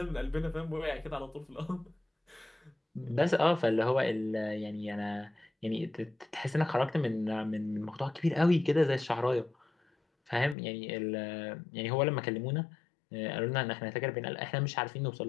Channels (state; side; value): drops out; right; at 10.6 s